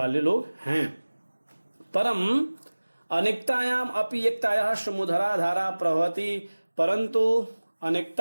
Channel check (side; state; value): both; inverted; correlation -1.00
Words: लोग हैं। परम अनेकतायाम अपि एकतायाः समुधरा धारा प्रवहति, परंतु